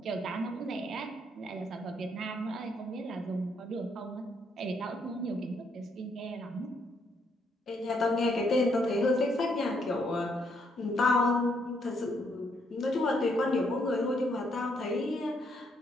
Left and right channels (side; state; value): both; normal; correlation 0.73